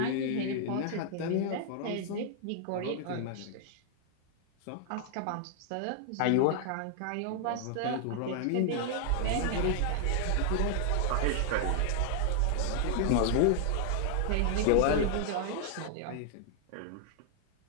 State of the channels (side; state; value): both; different; correlation 0.00